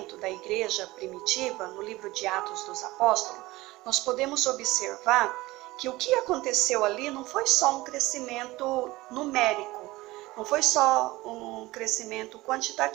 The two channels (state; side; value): quieter; left; 19.5 dB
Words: da igreja primitiva, no livro de Atos dos Apóstolos, nós podemos observar que o que aconteceu ali não foi só um crescimento numérico, não foi só um crescimento